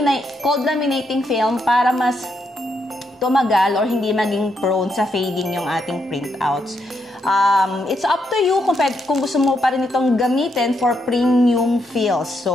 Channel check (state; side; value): normal; both; correlation 0.79